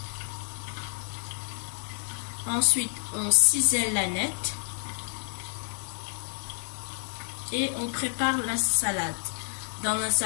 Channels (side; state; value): right; silent; digital silence